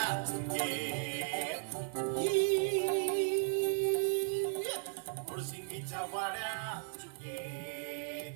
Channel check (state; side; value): silent; left; 54 dB below the other